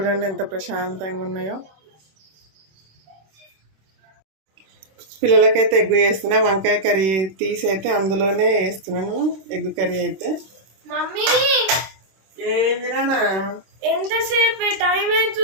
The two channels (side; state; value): left; late; 26 ms